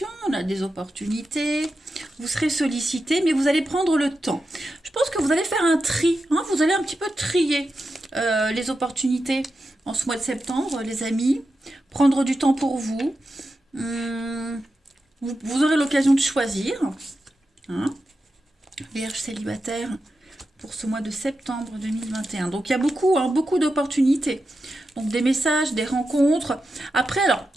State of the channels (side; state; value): both; normal; correlation 0.89